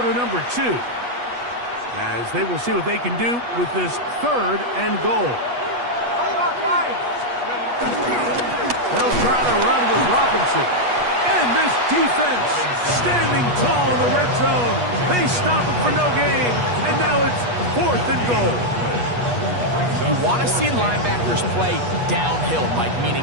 number 2, as they will see what they can do with this 3rd and goal. They'll try to run with Robinson. And this defense standing tall in the red zone. They stop it for no gain. And now it's 4th and goal. You want to see linebackers play downhill, Mike, meaning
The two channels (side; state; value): left; late; 8.3 ms